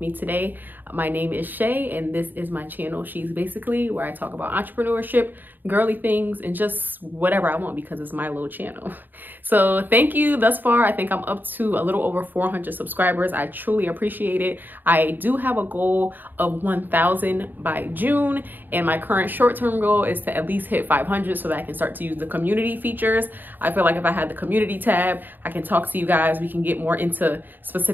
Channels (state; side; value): late; left; 0.090 ms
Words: today. My name is Shay and this is my channel, She's Basically, where I talk about entrepreneurship, girly things, and just whatever I want because it's my little channel. So thank you thus far. I think I'm up to a little over 400 subscribers. I truly appreciate it. I do have a goal of 1,000 by June, and my current short-term goal is to at least hit 500 so that I can start to use the community features. I feel like if I had the community tab, I can talk to you guys. We can get more into